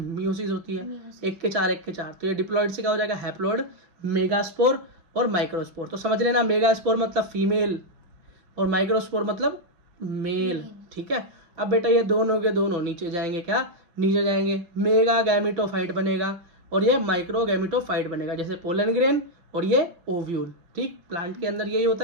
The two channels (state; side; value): late; left; 5.5 ms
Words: होती है, 1 के 4 1 के 4। तो ये डिप्लॉइड से क्या हो जाएगा, हैप्लॉइड, मेगास्पोर और माइक्रोस्पोर। तो समझ लेना, मेगास्पोर मतलब फीमेल और माइक्रोस्पोर मतलब मेल, ठीक है। अब बेटा ये दोनों के दोनों नीचे जाएंगे, क्या, नीचे जाएंगे, मेगा गैमेटोफाइट बनेगा और ये माइक्रो गैमेटोफाइट बनेगा, जैसे पोलन ग्रेन और ये ओव्यूल, ठीक। प्लांट के अंदर यही होता